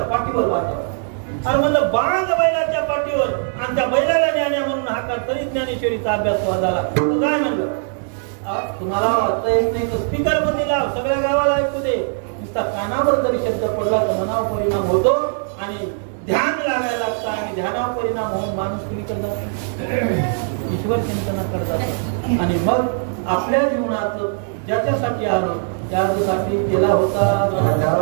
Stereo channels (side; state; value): left; silent; digital silence